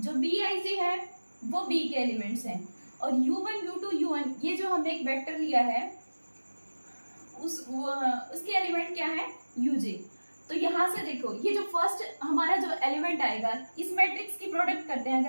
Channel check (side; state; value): both; inverted; correlation -1.00